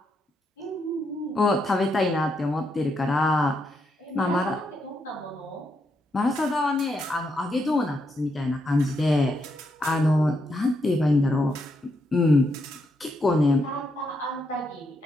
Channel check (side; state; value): both; normal; correlation 0.80